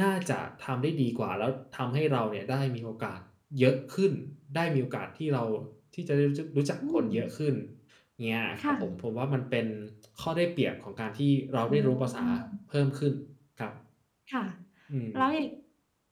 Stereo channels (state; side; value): identical; both; correlation 1.00